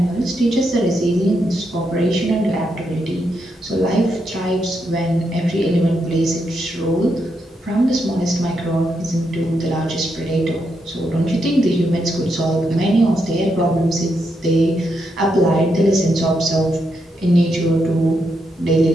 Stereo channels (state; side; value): normal; both; correlation 0.81